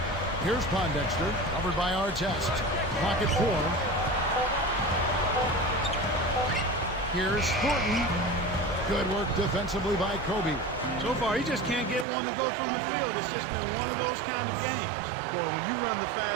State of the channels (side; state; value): left; drops out; at 12.1 s